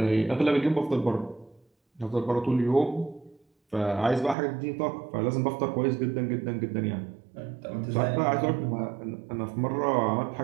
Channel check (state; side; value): drops out; left; at 4.4 s